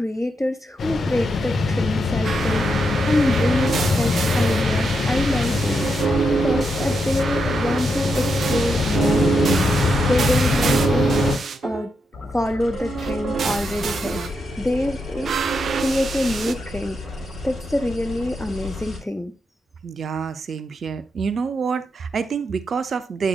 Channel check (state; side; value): normal; both; correlation 0.83